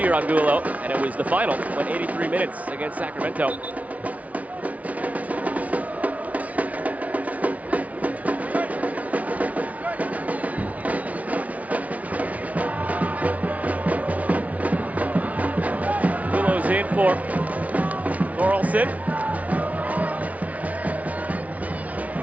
year, Angulo, and it was the final, went 83 minutes against Sacramento. In for Thorolfsson.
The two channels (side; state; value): left; late; 0.069 ms